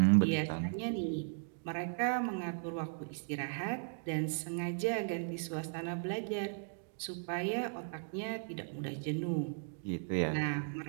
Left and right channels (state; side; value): silent; left; digital silence